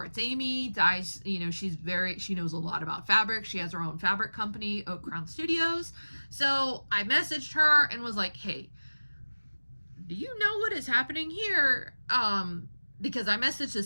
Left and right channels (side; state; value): both; inverted; correlation -1.00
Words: Amy dyes, she knows a lot about fabric. She has her own fabric company, Oak Crown Studios. So I messaged her and was like, hey, do you know what is happening here? Because I messaged the